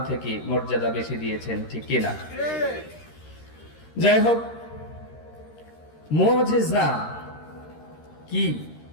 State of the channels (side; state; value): right; late; 13 ms